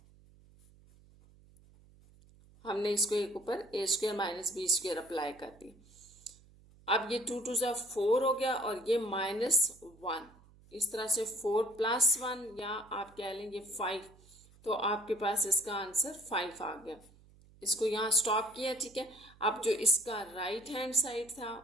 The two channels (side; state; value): right; noise; hum, 26 dB below the sound